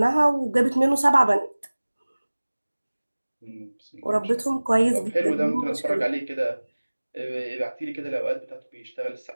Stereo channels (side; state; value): both; inverted; correlation -1.00